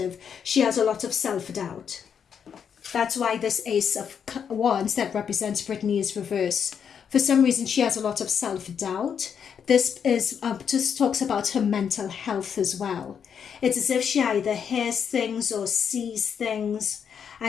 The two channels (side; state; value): right; quieter; 7.5 dB